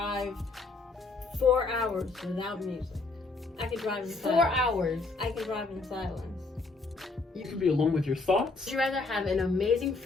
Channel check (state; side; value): quieter; right; 3.7 dB